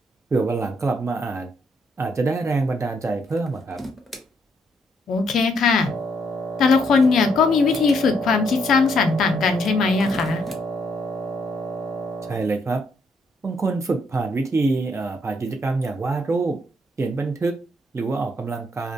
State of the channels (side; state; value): both; normal; correlation 0.73